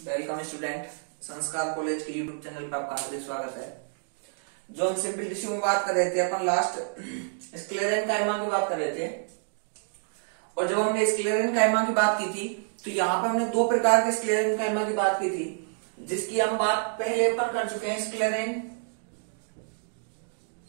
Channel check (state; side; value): silent; left; digital silence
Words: Welcome student. संस्कार कॉलेज के यूट्यूब चैनल पर आपका हार्दिक स्वागत है। जो हम सिंपल टिश्यू में बात कर रहे थे, अपन लास्ट स्क्लेरेनकाइमा की बात कर रहे थे। और जब हमने स्क्लेरेनकाइमा की बात की थी तो यहाँ पे हमने दो प्रकार के स्क्लेरेनकाइमा की बात की थी, जिसकी हम बात पहले अपन कर चुके हैं।